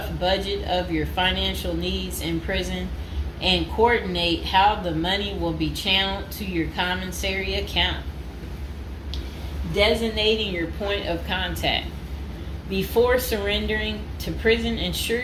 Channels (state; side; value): identical; both; correlation 1.00